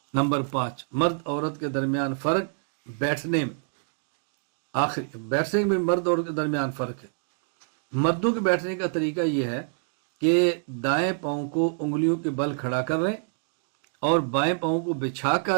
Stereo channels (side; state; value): left; silent; digital silence